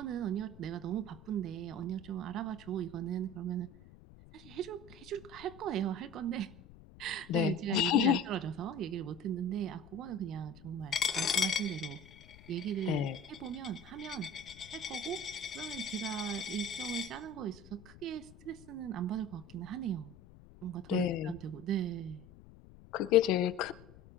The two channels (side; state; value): left; noise; rumble, 20 dB below the sound